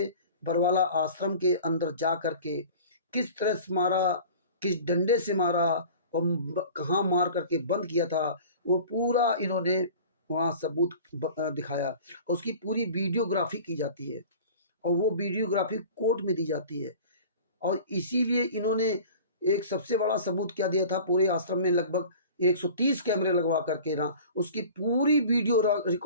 बरवाला आश्रम के अंदर जा करके किस तरह से मारा, किस डंडे से मारा और कहाँ मार करके बंद किया था, वो पूरा इन्होंने वहाँ सबूत दिखाया। उसकी पूरी वीडियोग्राफी की जाती है और वो वीडियोग्राफी कोर्ट में दी जाती है। और इसीलिए इन्होंने एक सबसे बड़ा सबूत क्या दिया था, पूरे आश्रम में लगभग 130 कैमरे लगवा करके ना उसकी पूरी वीडियो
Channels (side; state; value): both; inverted; correlation -0.42